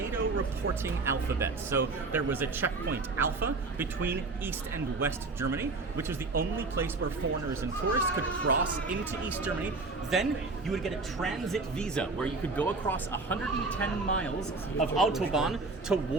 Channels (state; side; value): quieter; left; 3.6 dB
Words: reporting alphabet. So there was a Checkpoint Alpha between East and West Germany, which was the only place where foreigners and tourists could cross into East Germany. Then you would get a transit visa where you could go across 110 miles of Autobahn